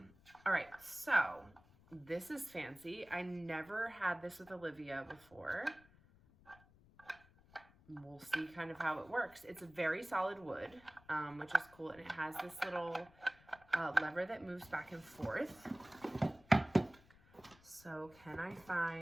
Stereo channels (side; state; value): left; noise; rumble, 26 dB below the sound